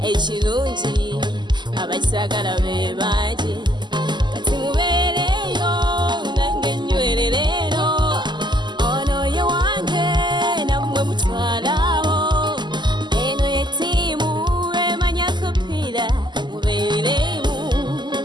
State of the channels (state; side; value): late; left; 0.21 ms